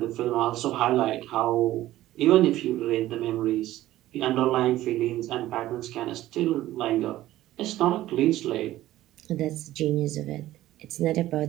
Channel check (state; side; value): quieter; left; 14.9 dB